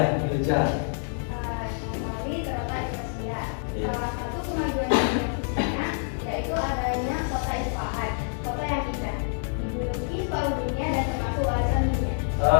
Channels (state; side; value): silent; right; 60 dB below the other